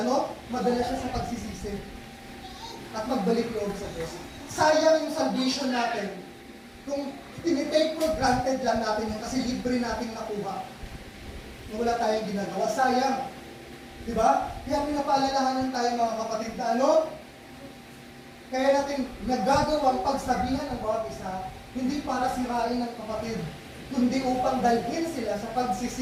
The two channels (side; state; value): both; identical; correlation 1.00